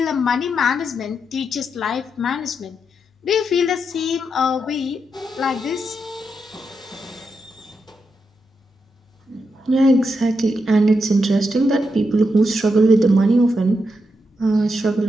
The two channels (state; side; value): normal; both; correlation 0.83